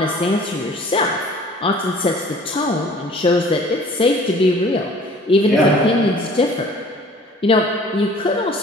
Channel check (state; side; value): normal; both; correlation 0.50